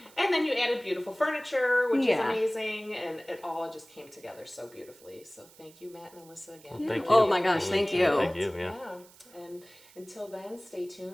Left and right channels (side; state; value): right; noise; hiss, 24 dB below the sound